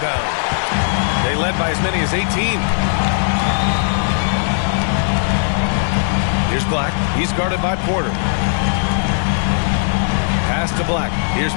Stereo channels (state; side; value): silent; right; 68 dB below the other